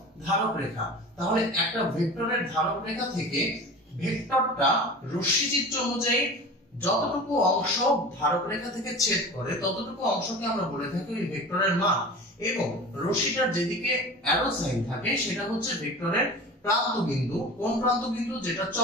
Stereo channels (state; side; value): normal; both; correlation 0.35